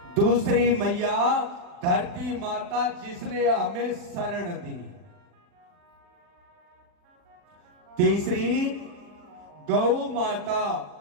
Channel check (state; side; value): late; left; 40 ms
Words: दूसरी मैया धरती माता, जिसने हमें शरण दी। तीसरी गौ माता,